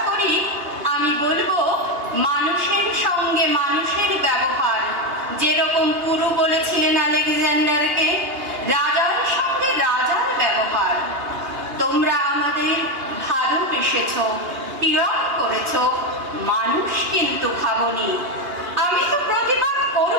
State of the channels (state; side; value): late; left; 2.8 ms